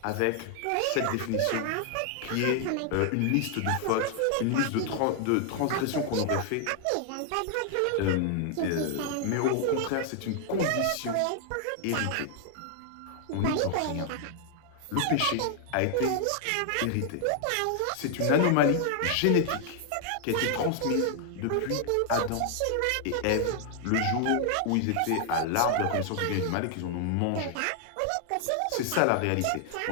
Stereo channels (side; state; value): both; different; correlation 0.00